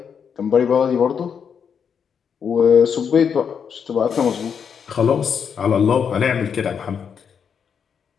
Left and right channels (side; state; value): right; quieter; 7.1 dB